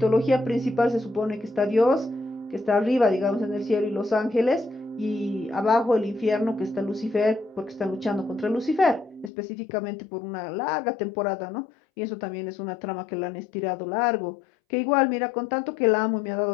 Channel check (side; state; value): right; drops out; at 9.3 s